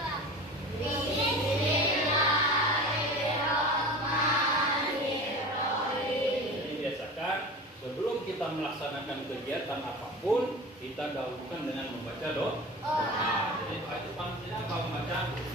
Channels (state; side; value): normal; both; correlation 0.34